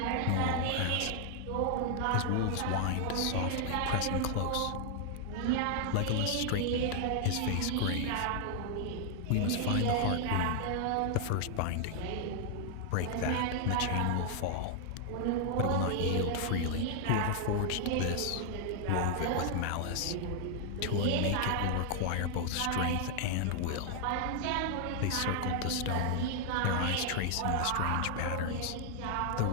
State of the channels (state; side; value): different; both; correlation 0.00